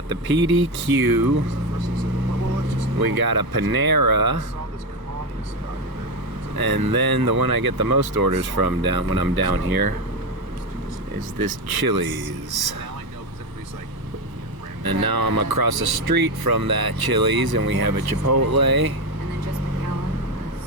the PDQ, we got a Panera, and then the one I get the most orders from when I'm down here is this Chili's. And now I'm across the street from that Chili's and we have a Chipotle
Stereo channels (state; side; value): late; left; 1.1 ms